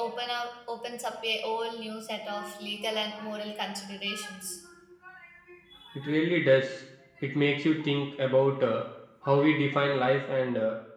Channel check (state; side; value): identical; both; correlation 1.00